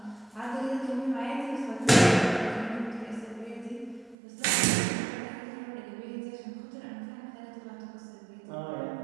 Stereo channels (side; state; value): left; drops out; at 4.2 s